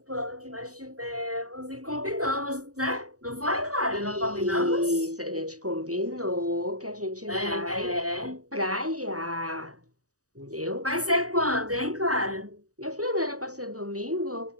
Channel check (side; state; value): left; late; 0.66 ms